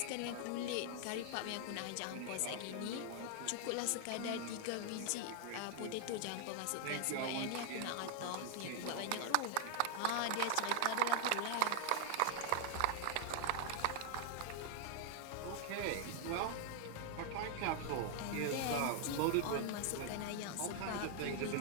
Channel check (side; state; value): both; different; correlation 0.00